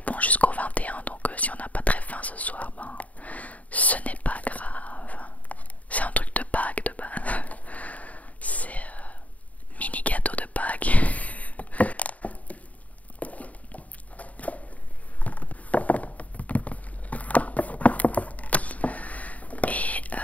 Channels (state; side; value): late; right; 0.070 ms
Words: bon jusqu'au 21, donc si on n'a pas très faim ce soir, ben ce n'est pas grave. C'est un truc de Pâques de base. C'est mini gâteau de Pâques. Et